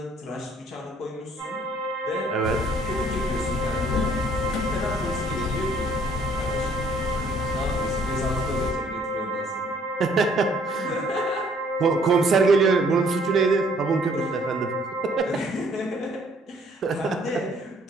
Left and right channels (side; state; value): both; normal; correlation 0.61